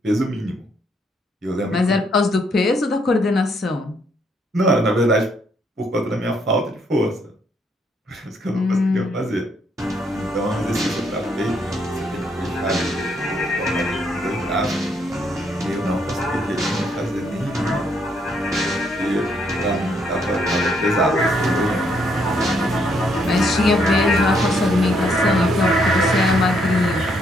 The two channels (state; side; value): normal; both; correlation 0.72